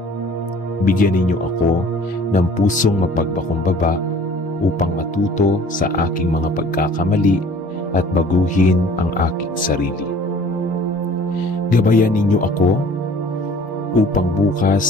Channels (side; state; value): both; normal; correlation 0.50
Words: Bigyan ninyo ako ng pusong mapagpakumbaba upang matuto sa aking mga pagkakamali at baguhin ang aking sarili. Gabayan ninyo ako upang bukas